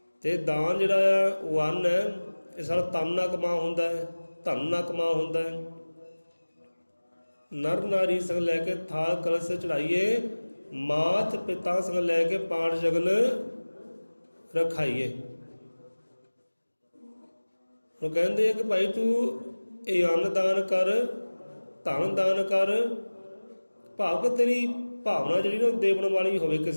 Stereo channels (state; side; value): inverted; both; correlation -1.00